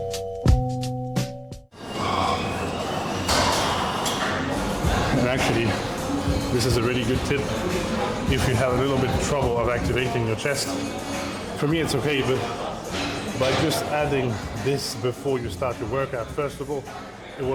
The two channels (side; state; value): both; identical; correlation 1.00